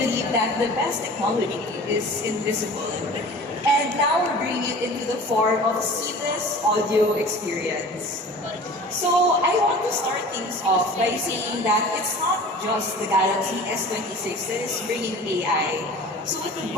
believe that the best technology is invisible. And now we're bringing it into the form of seamless audio experience. So I want to start things off by saying that it's not just the Galaxy S26 that is bringing AI. So with the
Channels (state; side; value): normal; both; correlation 0.41